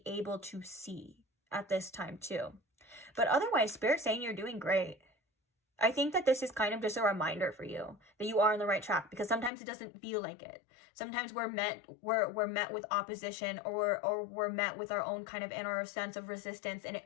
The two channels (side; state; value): right; drops out; at 9.5 s